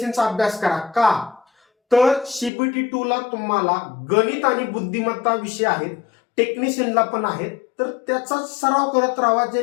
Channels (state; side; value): drops out; right; at 2.5 s